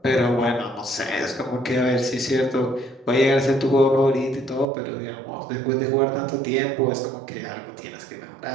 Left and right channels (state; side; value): drops out; left; at 4.7 s